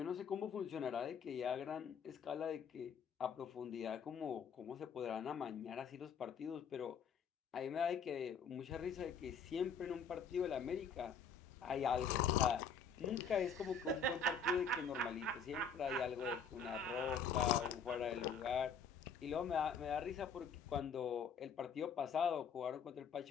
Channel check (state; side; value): quieter; right; 5.7 dB